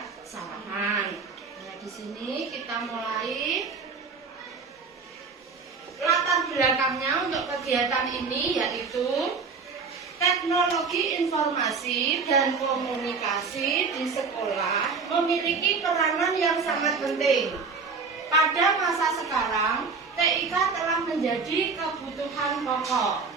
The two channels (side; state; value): left; quieter; 4.9 dB